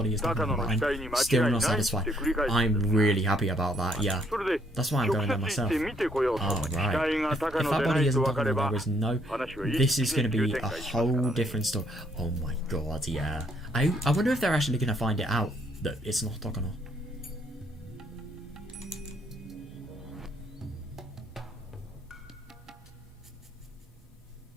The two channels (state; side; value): normal; both; correlation 0.69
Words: is Takano, but I'm still not satisfied. I'm really happy about that, yeah. That's why I'm going there myself. Oh, right. If that body isn't Takano, there is no... This is going to be a whole different story. Oh my god, yeah. I wonder if they're actually going to find it out that it's not Takano.